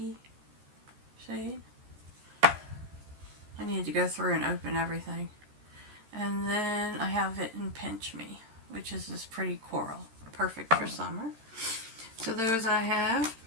shade? I need to go through and open everything. And then I have it in Pinch Me, which is this pretty coral. Perfect for summer. So those I have.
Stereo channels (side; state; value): left; late; 13 ms